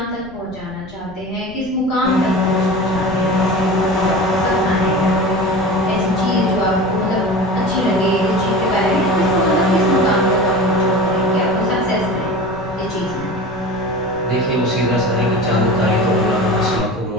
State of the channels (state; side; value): noise; right; rumble, 20 dB below the sound